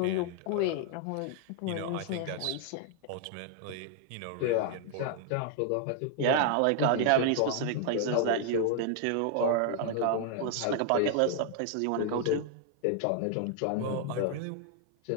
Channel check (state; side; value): different; both; correlation 0.00